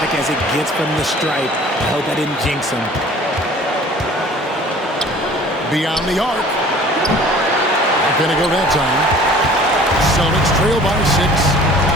as it gets from the stripe. I hope I didn't jinx him. Beyond the arc. Not going to go that time. Celtics trail by 6.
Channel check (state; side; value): normal; both; correlation 0.48